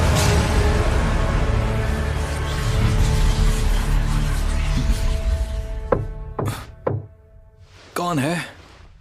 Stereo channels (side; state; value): both; identical; correlation 1.00